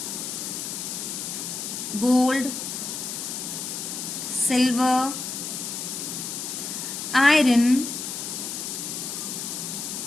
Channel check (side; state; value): left; noise; hiss, 5 dB below the sound